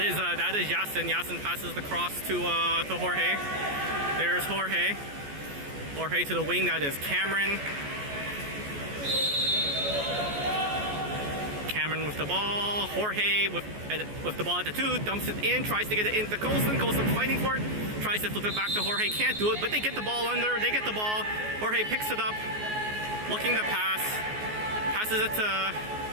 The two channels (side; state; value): left; late; 14 ms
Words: is Yasin. Yasin passes the cross to Jorge. There's Jorge. Jorge to the wing. That is Cameron. Cameron with the ball. Jorge with the ball at the 2. Dumps it in. Tries to get it into Colson. Colson fighting for it. Tries to flip it back to Jorge. Can't do it, but they get the ball under. They get the ball. Jorge picks it up. Looking to pass. Passes it to...